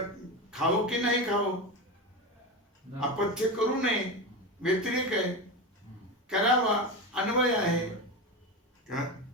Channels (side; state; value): both; normal; correlation 0.20